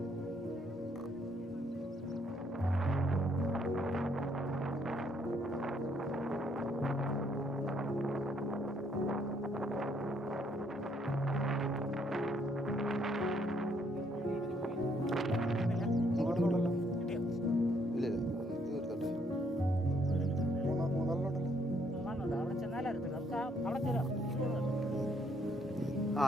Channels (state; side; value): normal; both; correlation 0.69